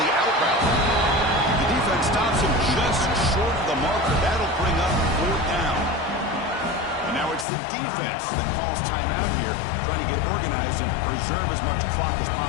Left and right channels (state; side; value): drops out; right; at 7.5 s